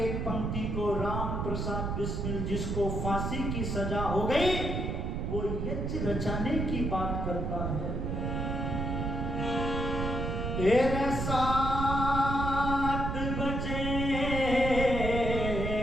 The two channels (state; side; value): noise; right; rumble, 2 dB below the sound